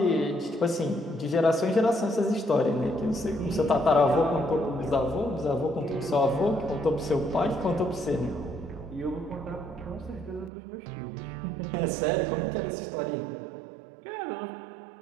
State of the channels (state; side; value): drops out; left; at 10.5 s